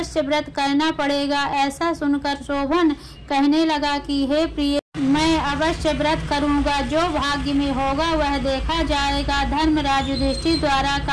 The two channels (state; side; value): identical; both; correlation 1.00